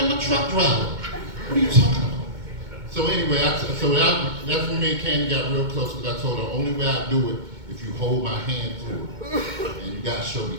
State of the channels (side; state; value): left; late; 2.2 ms